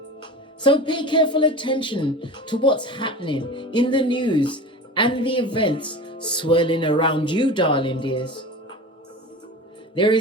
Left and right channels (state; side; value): normal; both; correlation 0.33